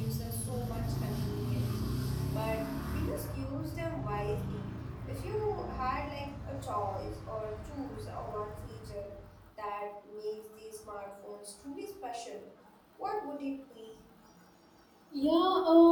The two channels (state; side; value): identical; both; correlation 1.00